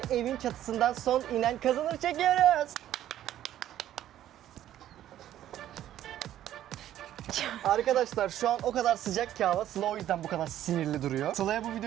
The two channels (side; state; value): left; quieter; 12.2 dB